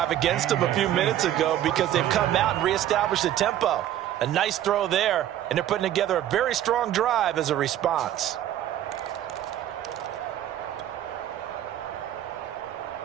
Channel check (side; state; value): left; quieter; 12.0 dB